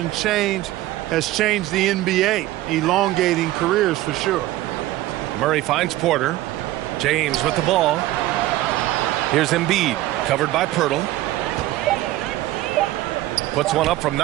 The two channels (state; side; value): quieter; left; 16.0 dB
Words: change has changed the NBA, elongating careers for sure. Murray finds Porter. James with the ball. Here's Embiid, covered by Pirtle. Puts one up from